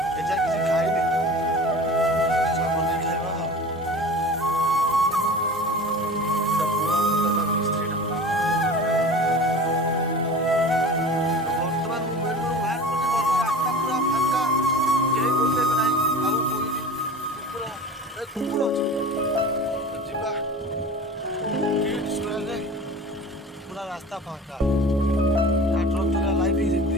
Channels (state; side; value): normal; both; correlation 0.37